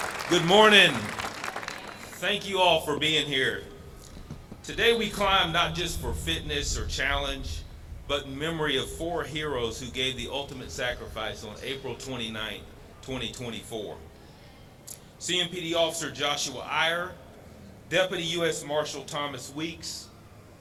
Good morning. Thank you all for being here. Today we climb not just for fitness or challenge, but in memory of 4 heroes who gave the ultimate sacrifice on April 29th, 2024. CMPD Officer Joshua Iyer, Deputy U.S. Marshal Thomas Weeks,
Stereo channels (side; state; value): both; identical; correlation 1.00